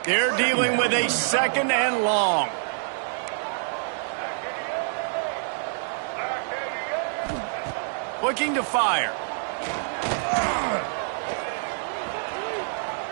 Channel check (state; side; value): silent; left; digital silence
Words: They're dealing with a 2nd and long. Looking to fire.